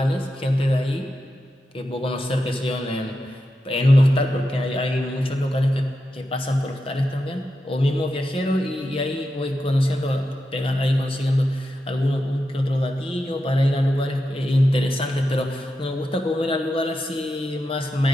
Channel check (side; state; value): both; normal; correlation 0.88